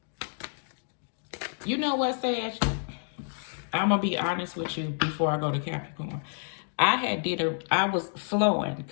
You know what, Sage? I'm gonna be honest with you before I go to Capricorn. I was flowing,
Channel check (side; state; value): right; silent; 58 dB below the other